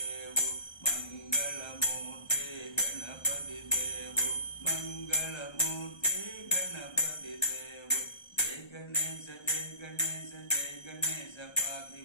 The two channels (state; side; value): late; right; 1.3 ms